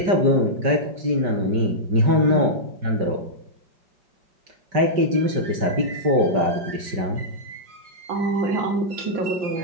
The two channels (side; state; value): left; late; 5.1 ms